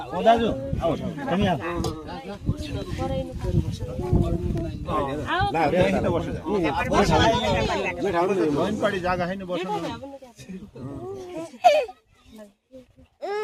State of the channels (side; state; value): both; identical; correlation 1.00